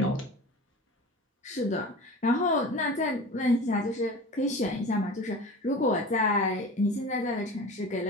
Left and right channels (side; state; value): both; normal; correlation 0.35